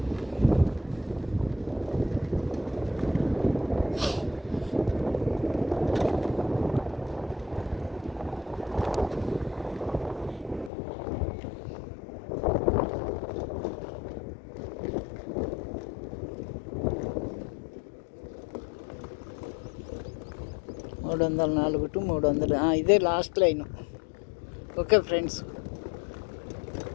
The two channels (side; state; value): right; drops out; at 10.7 s